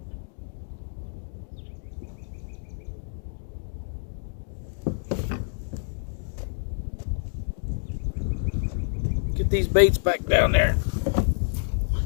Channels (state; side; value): silent; right; digital silence